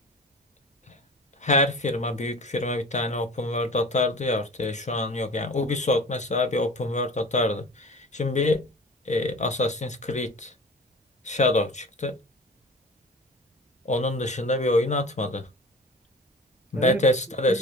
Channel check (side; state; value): both; normal; correlation 0.39